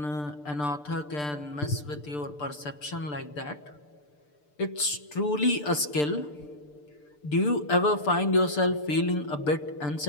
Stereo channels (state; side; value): late; right; 6.8 ms